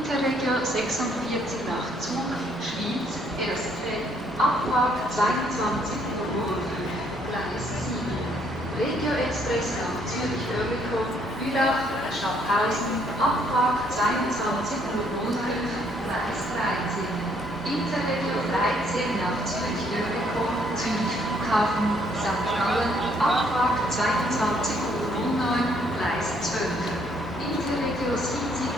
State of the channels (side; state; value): both; normal; correlation 0.67